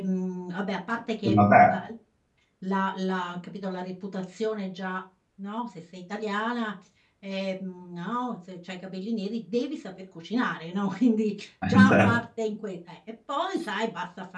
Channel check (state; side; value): identical; both; correlation 1.00